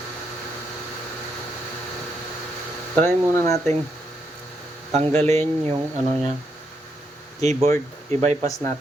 Try muna nating tanggalin yung ano niya, keyboard, i-bypass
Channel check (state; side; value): normal; both; correlation 0.78